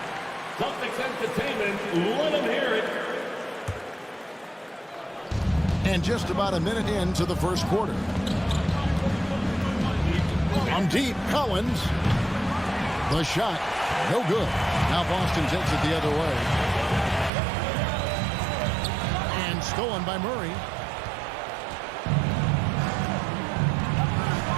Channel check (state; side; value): drops out; left; at 17.3 s